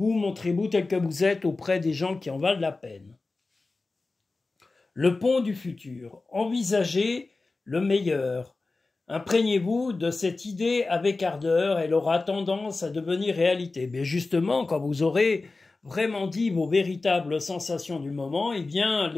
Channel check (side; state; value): right; quieter; 3.6 dB